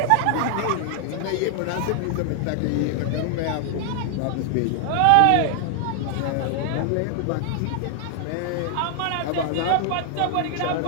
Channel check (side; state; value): both; different; correlation 0.00